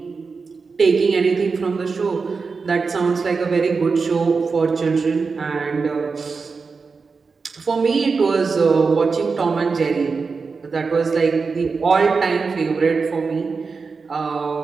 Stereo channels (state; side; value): quieter; left; 4.7 dB